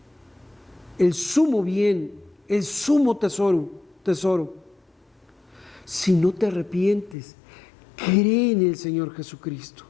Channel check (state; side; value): drops out; right; at 7.2 s